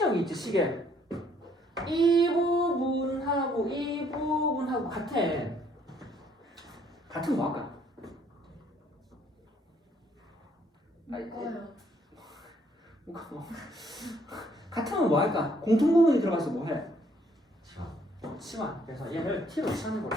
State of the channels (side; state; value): both; normal; correlation 0.65